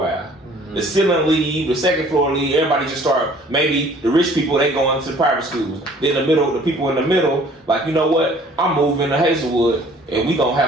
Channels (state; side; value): normal; both; correlation 0.54